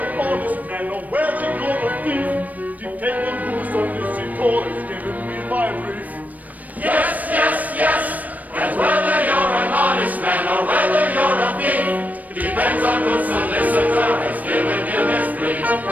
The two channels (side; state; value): left; late; 0.076 ms